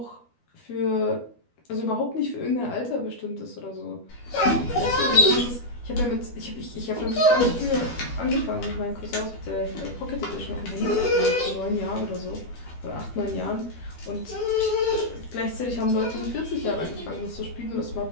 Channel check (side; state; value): right; late; 12 ms